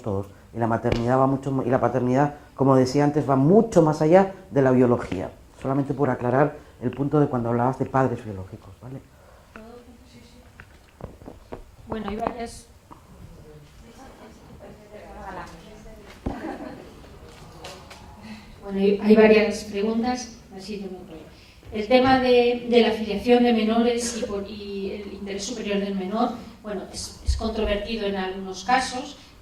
todos. Y la maternidad y la paternidad, como decía antes, va mucho más allá de la biología. Solamente por aclarar el punto de cuando hablabas de padres biológicos, ¿vale? Bueno, hay varias... Bueno, hay varias preguntas, así de un rollo. El tema de la filiación de menores y el interés superior del menor, bueno, es controvertido en algunos casos.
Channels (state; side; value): identical; both; correlation 1.00